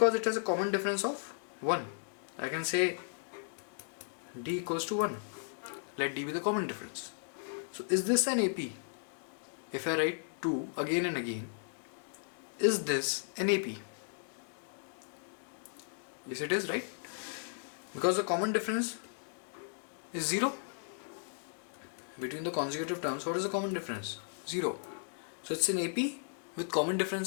it has a common difference of 1. I can say D equals to 1. Let D be the common difference. So is this an AP? If I write 2 again and again, is this an AP? Yes, it is, right? Because the common difference is 0. Between the consecutive terms, what is the common difference? 0. So it's an AP with common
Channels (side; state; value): right; silent; digital silence